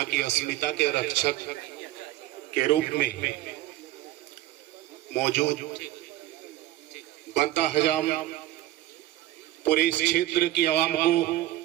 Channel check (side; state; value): left; quieter; 15.2 dB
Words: की अस्मिता के रक्षक के रूप में मौजूद बनता हजाम पूरे इस क्षेत्र की आवाम